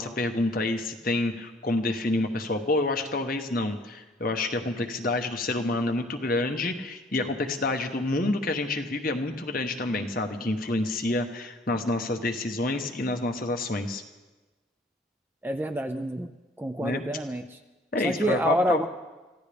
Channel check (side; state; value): both; normal; correlation 0.57